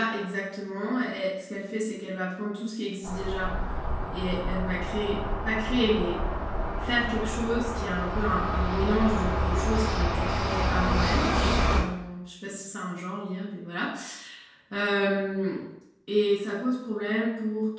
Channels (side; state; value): both; identical; correlation 1.00